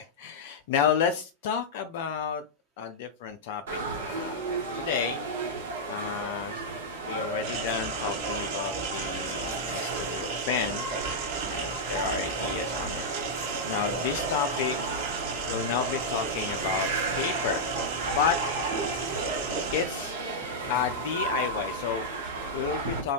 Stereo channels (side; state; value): both; normal; correlation -0.06